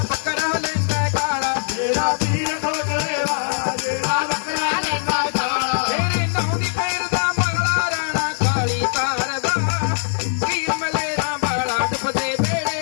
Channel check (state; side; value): silent; right; digital silence